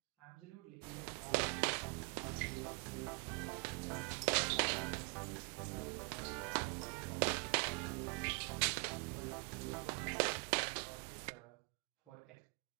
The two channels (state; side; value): quieter; left; 32.7 dB